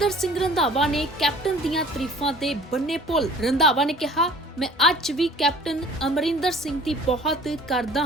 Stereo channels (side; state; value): both; normal; correlation 0.49